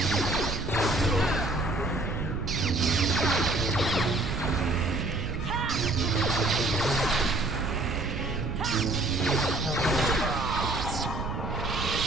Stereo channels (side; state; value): right; noise; rumble, 5 dB below the sound